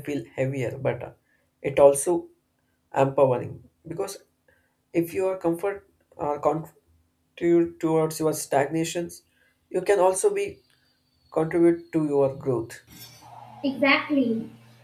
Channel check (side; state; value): both; identical; correlation 1.00